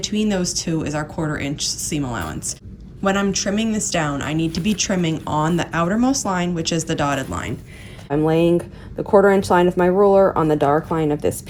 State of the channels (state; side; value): identical; both; correlation 1.00